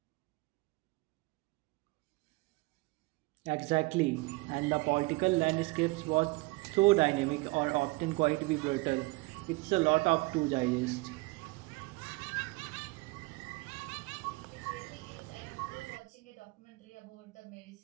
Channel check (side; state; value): left; quieter; 24.8 dB